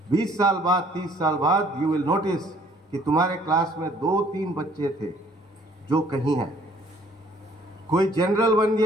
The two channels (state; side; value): normal; both; correlation 0.59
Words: 20 साल बाद 30 साल बाद you will notice कि तुम्हारे class में 2-3 बच्चे थे जो कहीं हैं. कोई जनरल बन